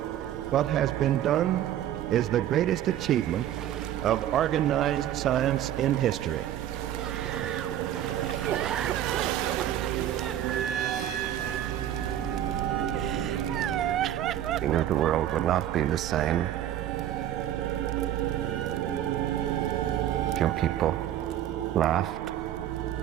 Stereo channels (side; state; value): left; quieter; 11.6 dB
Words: What has been done is the greatest achievement of organized science in history. We knew the world would not be the same. Few people laughed.